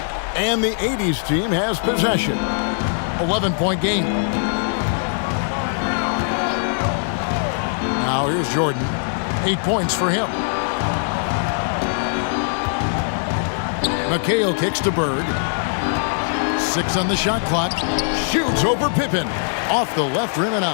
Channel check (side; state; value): right; silent; digital silence